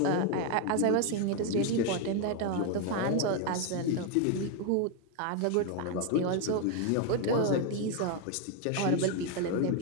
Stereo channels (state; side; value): different; both; correlation 0.01